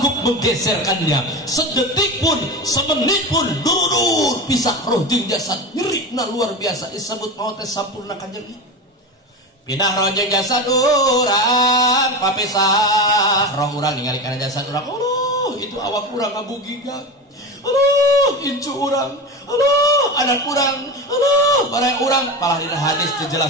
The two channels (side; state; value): both; normal; correlation 0.24